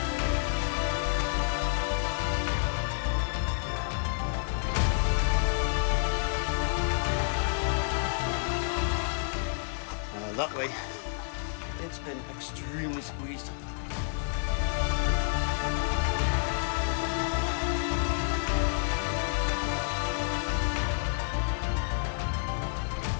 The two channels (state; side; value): silent; right; digital silence